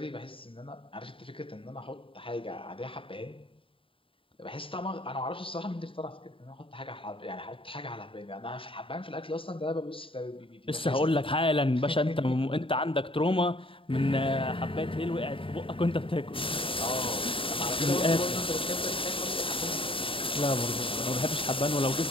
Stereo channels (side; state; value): right; late; 0.26 ms